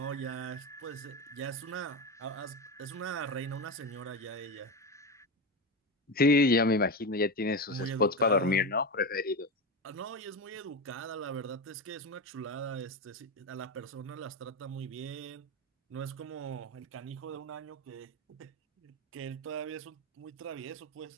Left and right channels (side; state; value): both; normal; correlation 0.18